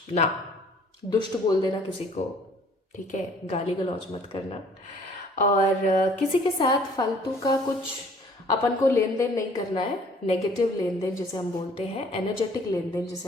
ना दुष्ट बोल देना किसी को, ठीक है, गाली गलौज मत करना, और किसी के साथ फालतू का कुछ अपन को लेन देन नहीं करना है, नेगेटिव लेन देन जिसे हम बोलते हैं, एनर्जेटिक लेन देन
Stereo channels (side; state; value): both; normal; correlation 0.55